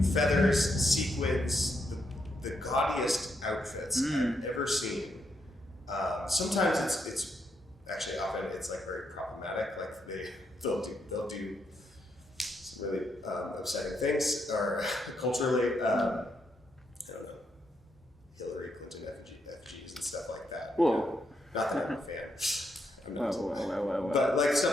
feathers, sequins, the gaudiest outfits I've ever seen. Sometimes it's actually often it's like very problematic. Like they'll do some really upsetting things, or culturally, I don't know, Hillary Clinton effigies and stuff like that. Whoa. Not that I'm a fan. I'm not. Whoa. But like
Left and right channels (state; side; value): normal; both; correlation 0.79